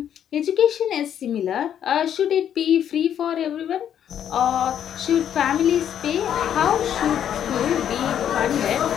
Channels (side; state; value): right; quieter; 9.6 dB